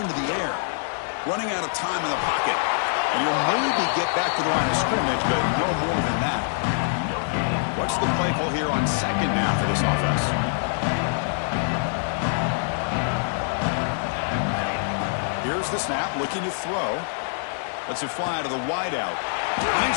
to the air. Running out of time in the pocket. And you'll maybe get back to the line of scrimmage, but no more than that. What's the play call here on second down for this offense? Here's the snap, looking to throw. Lets it fly to the wideout.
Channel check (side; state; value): right; silent; 62 dB below the other